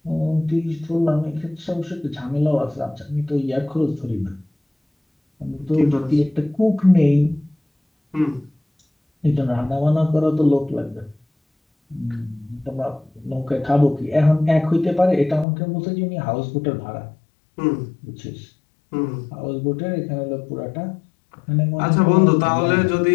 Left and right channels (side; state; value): right; drops out; at 15.5 s